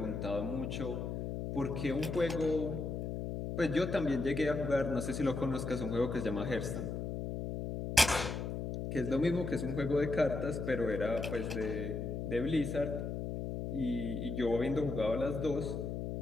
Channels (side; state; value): left; noise; hum, 4 dB below the sound